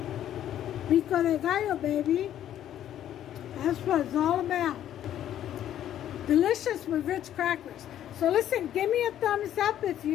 Pico de Gallo, baby. That's what it's all about. Delicious with Ritz crackers. So listen, give me a thumbs up if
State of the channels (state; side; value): quieter; right; 11.2 dB